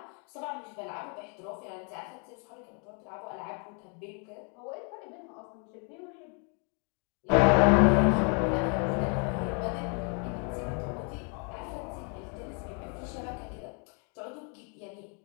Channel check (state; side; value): quieter; right; 39.0 dB